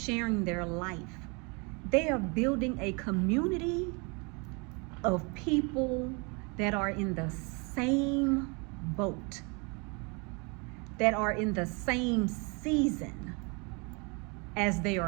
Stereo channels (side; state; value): left; quieter; 31.5 dB